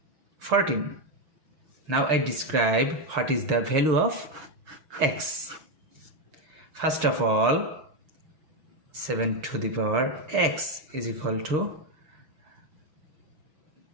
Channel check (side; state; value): left; late; 6.6 ms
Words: 14. Now I describe what is the value of x. First of all, 7 to the power x is equal to